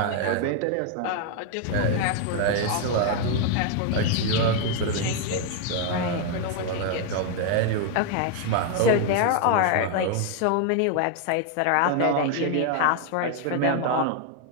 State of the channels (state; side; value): different; both; correlation 0.00